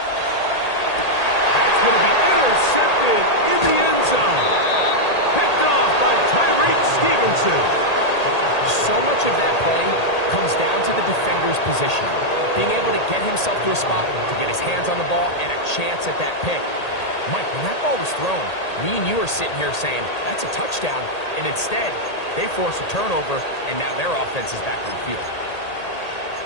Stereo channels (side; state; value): right; late; 1.8 ms